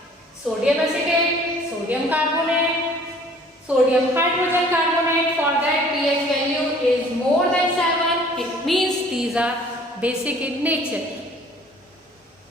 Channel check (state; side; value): normal; both; correlation 0.53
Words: sodium acetate, sodium carbonate, sodium hydrogen carbonate, for that pH value is more than 7. It means these are basic in nature.